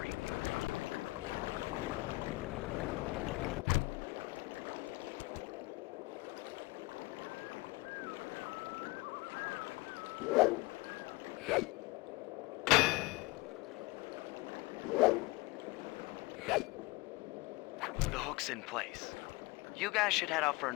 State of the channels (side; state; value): right; quieter; 23.4 dB